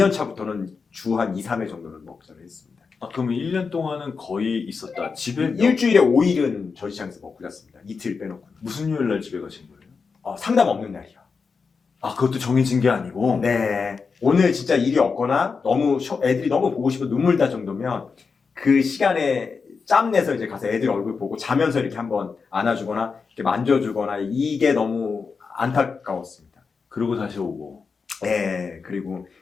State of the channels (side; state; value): right; quieter; 5.1 dB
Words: 차부터는 주 한 2, 3회 정도는 먹자를 했습니다. 아, 그러면 1년 동안은 거의 있었다. 집에 일주일에 5일은 전시장에서 먹고 잤습니다. 이틀 빼놓고. 무슨 요일 날 집에 가신 거예요? 상담 없는 날이요. 아, 그것도 정해진 게 아니고. 네. 오늘 진짜 일이 없거나 너무 애들이 너무 보고 싶어 눈물 날 정도면 그 시간에 짬 내서 이제 가서 애들 얼굴 보고 자면서 이렇게 한번 안아주거나 이렇게 만져주거나 이게 너무 안타까웠습니다. 그러고 다시 오고. 네. 그리고